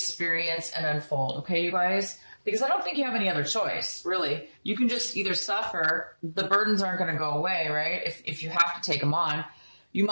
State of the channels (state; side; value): inverted; both; correlation -1.00